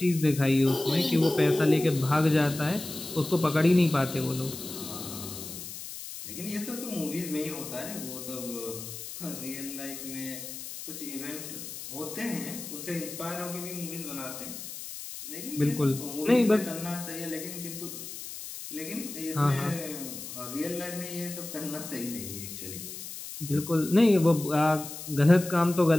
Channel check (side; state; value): left; noise; hiss, 10 dB below the sound